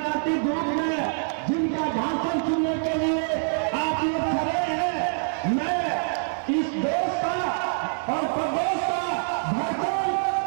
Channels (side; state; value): left; silent; 61 dB below the other